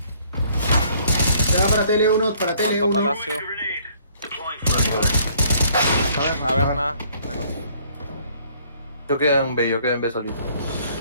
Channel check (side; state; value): both; inverted; correlation -0.61